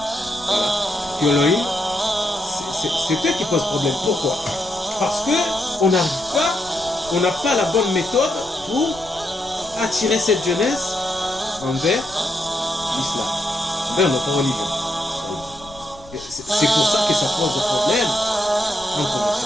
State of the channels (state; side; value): noise; left; rumble, 21 dB below the sound